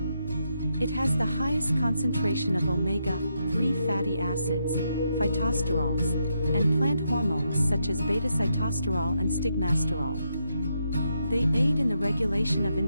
It has the highest concentration of omega-3 fatty acids, phytosterols, and plant hormones such as beta-sitosterol and stigmasterol. They aid in the regulation of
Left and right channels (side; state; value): both; inverted; correlation -0.81